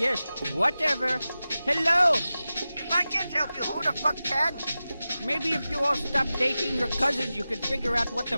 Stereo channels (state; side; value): inverted; both; correlation -0.95